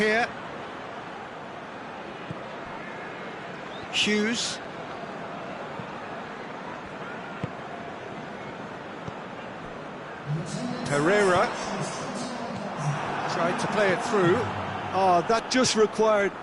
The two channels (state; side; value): identical; both; correlation 1.00